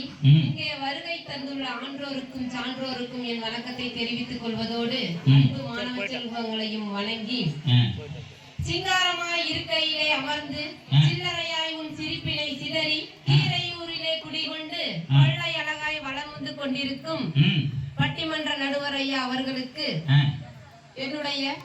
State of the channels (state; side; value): identical; both; correlation 1.00